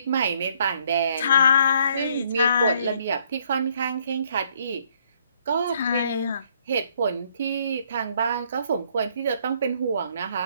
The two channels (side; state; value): both; inverted; correlation -0.66